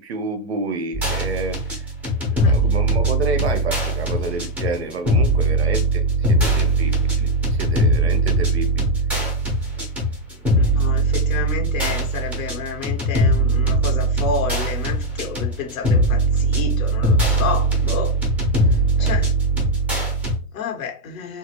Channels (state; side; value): normal; both; correlation 0.00